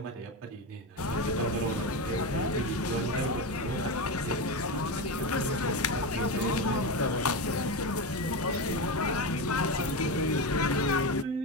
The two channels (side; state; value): both; normal; correlation 0.17